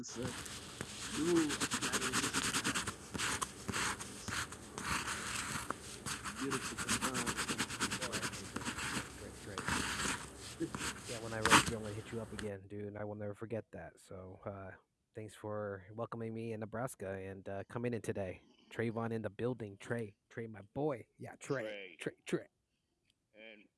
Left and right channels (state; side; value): identical; both; correlation 1.00